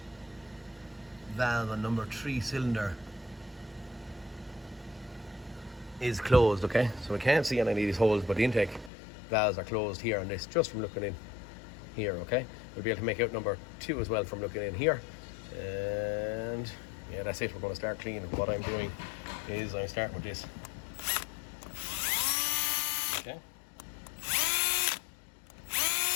valve on number 3 cylinder is closed, okay? So I can't see any of these holes, but the intake valves are closed here on this, just from looking in here, okay? We'll be able to make out number 2 as well from looking in here. And yeah, that's it. We're going to start cleaning. What I'm doing is I'm starting with this. Okay.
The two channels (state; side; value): drops out; right; at 8.9 s